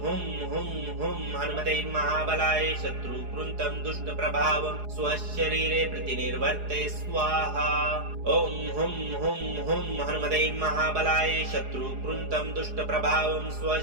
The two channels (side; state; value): left; late; 4.8 ms